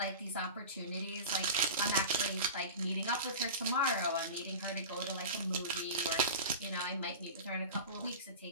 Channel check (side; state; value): both; inverted; correlation -0.31